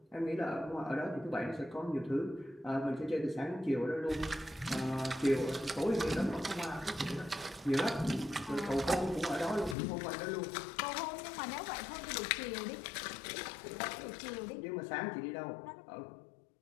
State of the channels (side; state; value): right; drops out; at 9.8 s